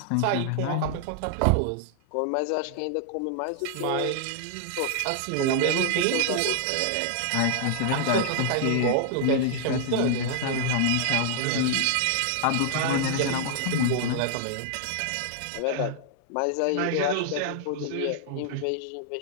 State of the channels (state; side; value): different; both; correlation 0.00